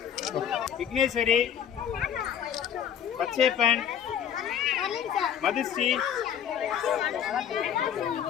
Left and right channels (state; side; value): quieter; right; 9.1 dB